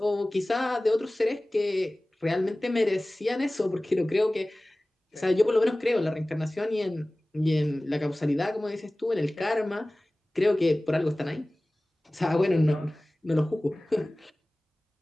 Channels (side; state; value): both; normal; correlation 0.98